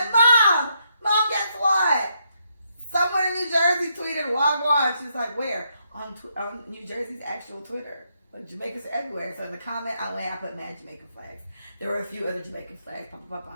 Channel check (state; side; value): inverted; both; correlation -0.77